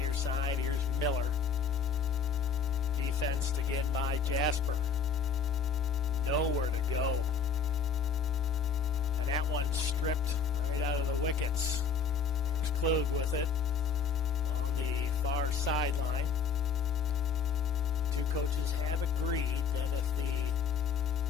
side. Here's Miller. Defensed again by Jasper. Nowhere to go. And that one stripped right out of the wickets. Here's Klug with it on the far sideline. Two coaches have agreed that if the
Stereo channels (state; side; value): quieter; right; 5.7 dB